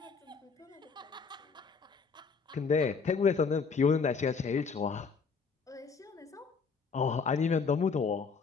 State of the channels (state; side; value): quieter; right; 5.3 dB